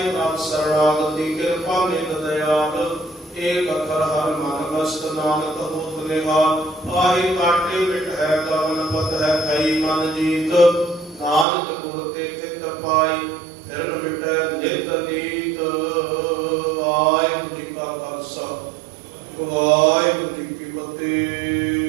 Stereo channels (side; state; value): left; drops out; at 11.5 s